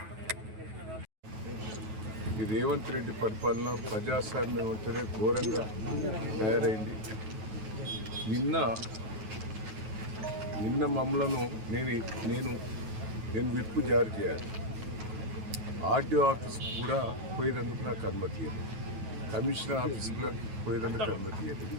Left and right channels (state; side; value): late; left; 9.3 ms